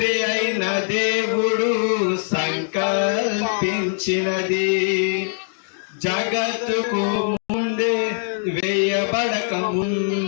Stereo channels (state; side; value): silent; right; digital silence